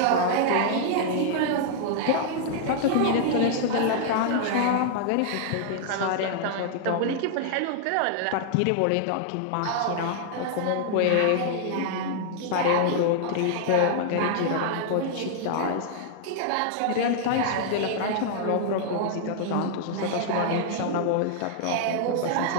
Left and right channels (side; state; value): both; different; correlation -0.01